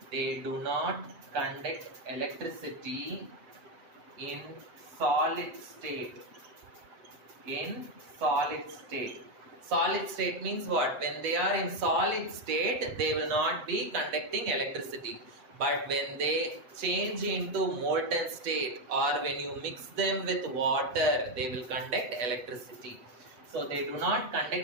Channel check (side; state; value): left; late; 8.2 ms